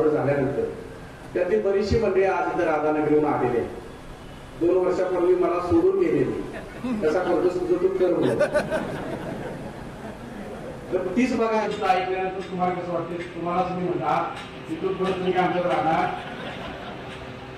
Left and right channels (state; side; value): identical; both; correlation 1.00